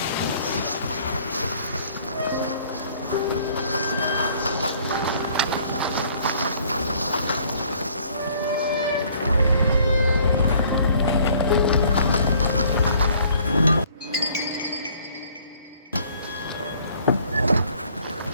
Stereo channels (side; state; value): both; inverted; correlation -0.59